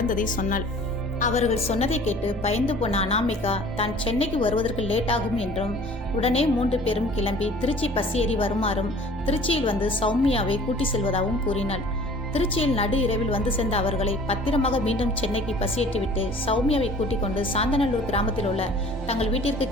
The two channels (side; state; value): both; normal; correlation 0.49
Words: சொன்னாள். அவர்கள் சொன்னதை கேட்டு பயந்து போன அனாமிகா தான் சென்னைக்கு வருவதற்கு லேட் ஆகும் என்றும் உடனே 3 பேரும் கிளம்பி திருச்சி பஸ் ஏறி வருமாறும் திருச்சியில் வந்து சௌமியாவை கூட்டி செல்வதாகவும் கூறினாள். திருச்சியில் நடு இரவில் வந்து சேர்ந்த அவர்களை பத்திரமாக மீண்டும் சென்னைக்கு பஸ் ஏற்றிவிட்டு சௌமியாவை கூட்டிக் கொண்டு சாந்தநல்லூர் கிராமத்தில் உள்ள தங்கள் வீட்டிற்கு